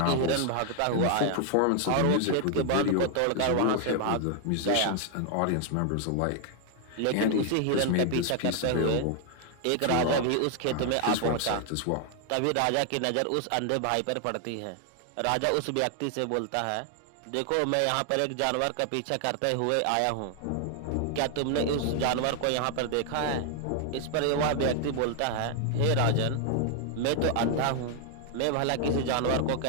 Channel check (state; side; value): different; both; correlation 0.00